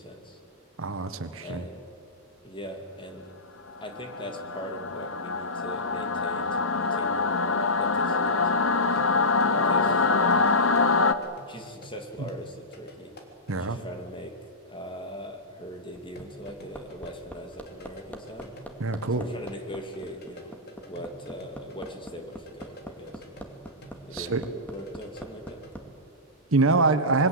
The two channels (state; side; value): normal; both; correlation -0.15